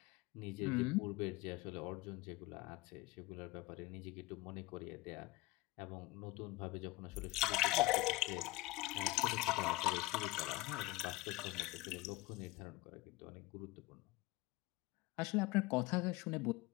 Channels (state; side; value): quieter; right; 20.2 dB